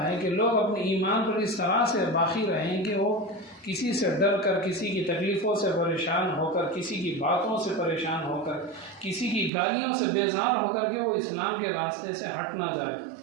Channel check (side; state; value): left; drops out; at 9.5 s